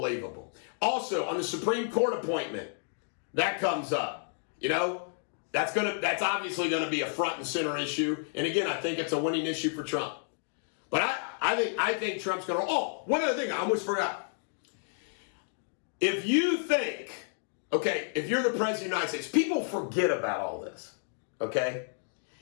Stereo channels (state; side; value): silent; right; digital silence